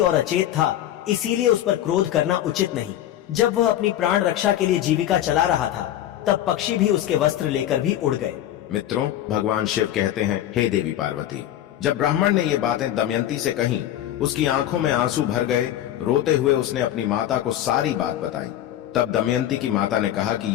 अचेत था, इसीलिए उस पर क्रोध करना उचित नहीं। जब वह अपनी प्राण रक्षा के लिए जीविका चला रहा था तब पक्षी भी उसके वस्त्र लेकर भी उड़ गए। मित्रों, भगवान शिव कहते हैं, हे देवी पार्वती। जब ब्राह्मण ने ये बातें दमयंती से कहीं, उसकी आंखों में आंसू भर गए। रोते हुए उसने अपनी माता को सारी बात बताई। तब दमयंती की माता ने कहा कि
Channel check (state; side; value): quieter; right; 12.1 dB